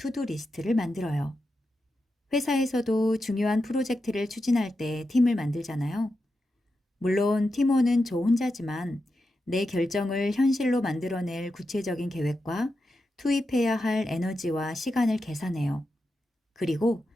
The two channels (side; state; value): both; normal; correlation 0.88